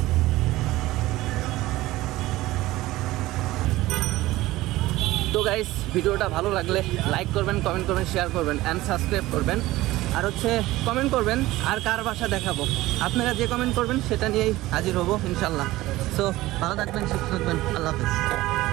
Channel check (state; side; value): quieter; left; 17.6 dB